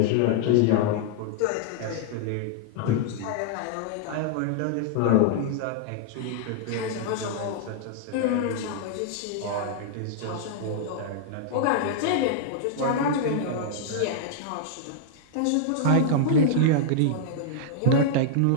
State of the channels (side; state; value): both; different; correlation -0.01